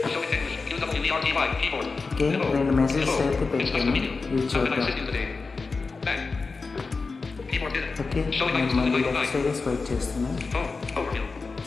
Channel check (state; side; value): quieter; right; 4.2 dB